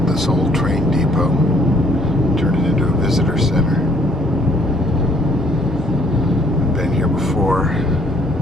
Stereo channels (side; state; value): both; normal; correlation 0.62